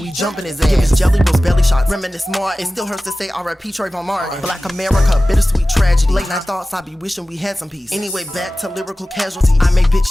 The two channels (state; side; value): normal; both; correlation 0.96